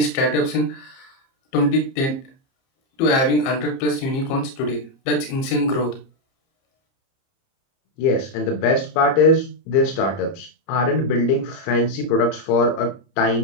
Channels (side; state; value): right; late; 30 ms